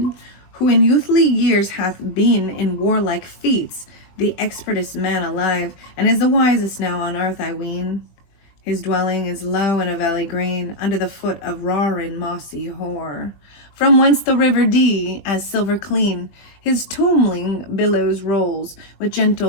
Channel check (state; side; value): late; right; 20 ms